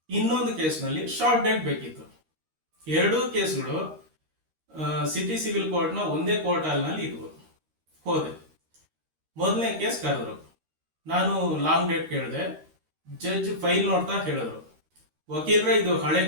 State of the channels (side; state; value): left; late; 13 ms